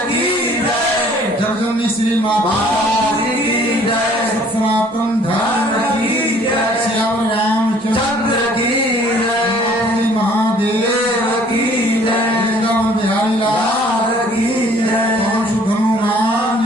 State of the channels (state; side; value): normal; both; correlation 0.56